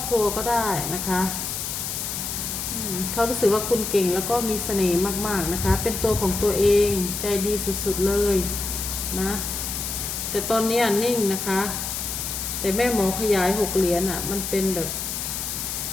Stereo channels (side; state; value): left; noise; hiss, 4 dB below the sound